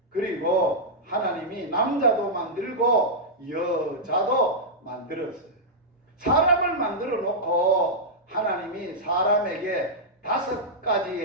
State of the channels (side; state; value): both; normal; correlation -0.09